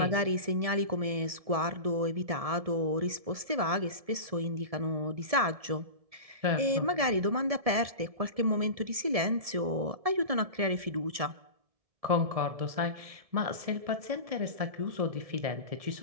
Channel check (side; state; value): left; late; 1.7 ms